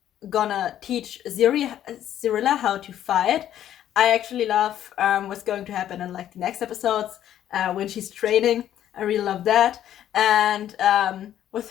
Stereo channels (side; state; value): right; quieter; 11.3 dB